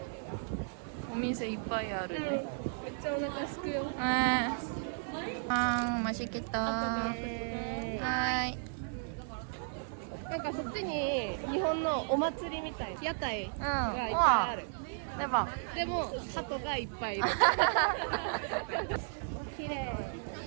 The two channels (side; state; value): left; silent; digital silence